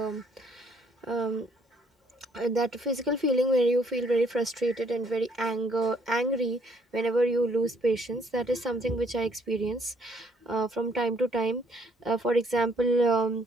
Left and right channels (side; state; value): both; normal; correlation 0.65